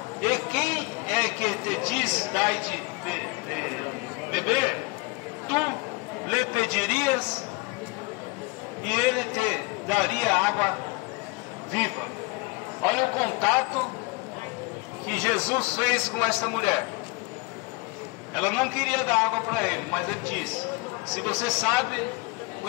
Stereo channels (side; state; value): right; quieter; 26.5 dB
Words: e quem é que te diz dai de beber, tu lhe pedirias e ele te daria água viva. Olha o contato que Jesus fez com esta mulher. Ela não queria dar água para ele, mas ele disse: se você sabe,